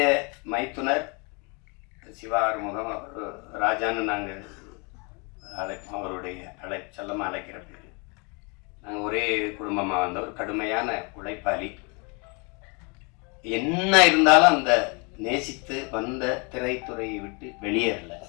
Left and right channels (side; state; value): right; quieter; 32.3 dB